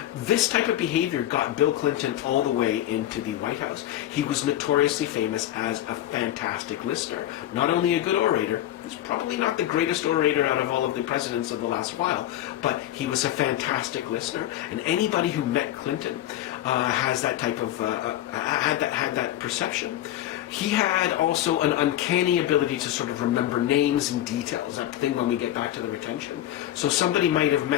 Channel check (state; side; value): quieter; right; 13.1 dB